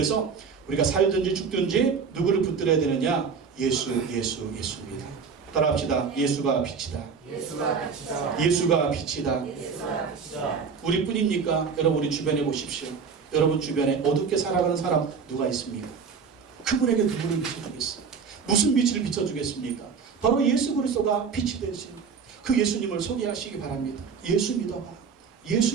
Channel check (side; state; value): left; quieter; 5.8 dB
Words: 우리가 살든지 죽든지 누구를 붙들어야 되느냐? 예수입니다. 따라합시다. 예수가 빛이다. 예수가 빛이다. 우리뿐입니까? 여러분, 우리 주변에 보십시오. 여러분 주변에 어둡게 살아가는 사람 누가 있습니까? 그분에게 누구를 비춰주겠어요? 무슨 빛을 비춰주겠습니까? 바로 예수 그리스도가 빛이 되신 그 예수님을 소개하시기 바랍니다. 예수 믿어봐.